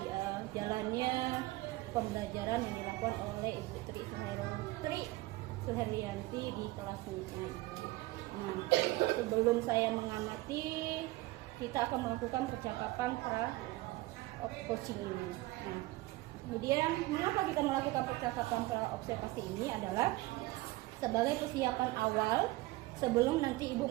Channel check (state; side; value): quieter; left; 19.7 dB